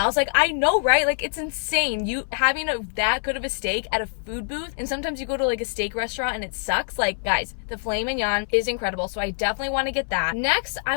was like, I know, right? Like, it's insane. You having that good of a steak at a food booth, and sometimes you go to like a steak restaurant and it sucks. Like, guys, the filet mignon is incredible. So I definitely want to get that. Next, I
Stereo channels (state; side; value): silent; right; 62 dB below the other